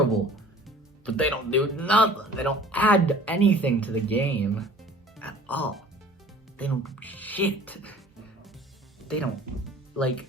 But they don't do nothing. They don't add anything to the game at all. They don't do shit. They don't,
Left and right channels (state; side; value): normal; both; correlation 0.48